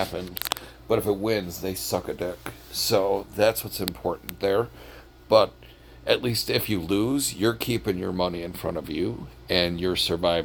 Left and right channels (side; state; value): both; identical; correlation 1.00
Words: But if it wins, they suck a dick. So that's what's important there. But at least if you lose, you're keeping your money in front of you and you're